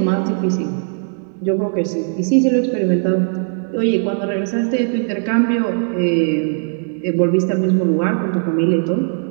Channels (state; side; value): silent; left; 67 dB below the other